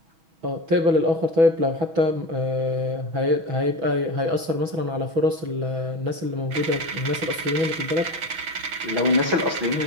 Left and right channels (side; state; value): left; late; 6.3 ms